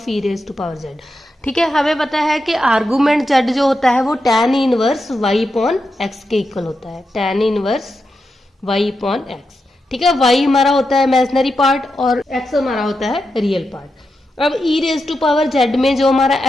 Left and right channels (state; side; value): normal; both; correlation 0.87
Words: E raise to power Z. ठीक है, हमें पता है कि आर्गुमेंट जेड जो होता है वो tan inverse y upon x के इक्वल होता है, tan inverse y upon x. ठीक है, वाई हमारा होता है इमेजिनरी पार्ट और एक्स हमारा होता है रियल पार्ट। अब ई रेज टू पावर जेड में जो हमारा